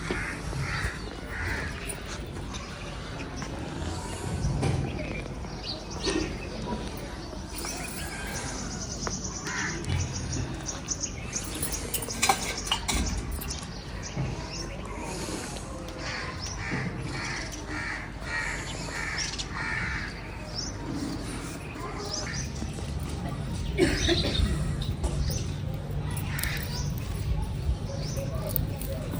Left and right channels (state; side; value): identical; both; correlation 1.00